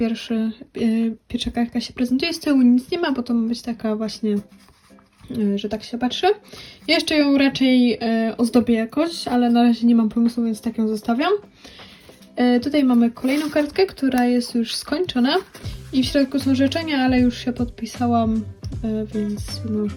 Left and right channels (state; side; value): identical; both; correlation 1.00